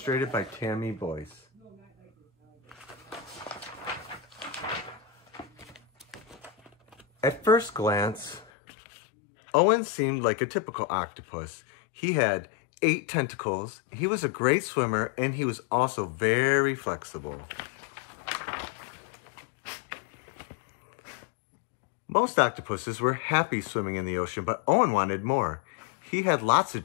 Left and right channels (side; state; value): right; drops out; at 8.5 s